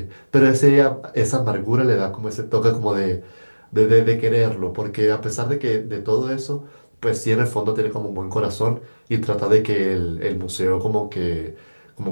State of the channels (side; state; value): both; inverted; correlation -1.00